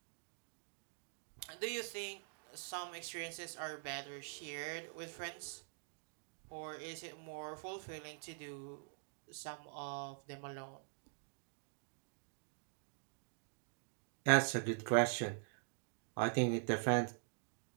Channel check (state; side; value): silent; left; digital silence